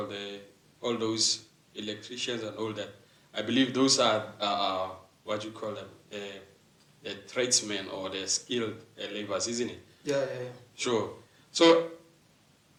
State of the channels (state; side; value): identical; both; correlation 1.00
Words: all those electricians and all that. I believe those are what you call them, the tradesmen or the skilled laborers, isn't it? Yeah. Sure. So,